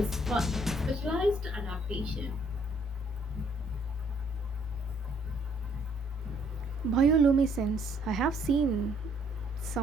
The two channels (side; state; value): both; normal; correlation 0.65